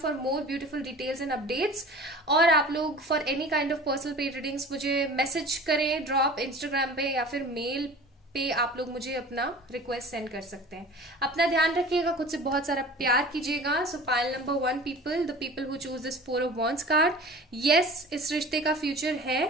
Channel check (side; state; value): both; normal; correlation 0.40